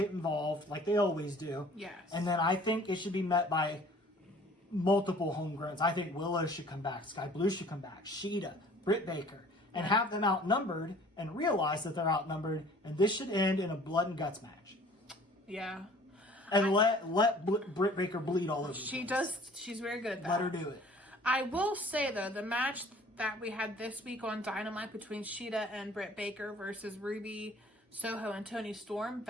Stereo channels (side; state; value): both; normal; correlation 0.51